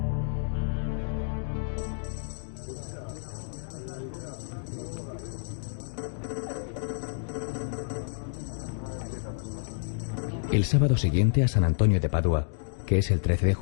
El sábado siguiente a San Antonio de Padua, que es el 13 de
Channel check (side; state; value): right; silent; digital silence